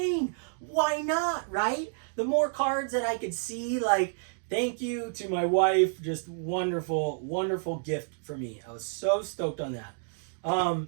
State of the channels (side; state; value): left; silent; digital silence